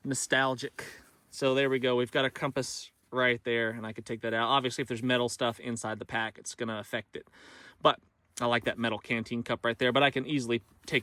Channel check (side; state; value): both; identical; correlation 1.00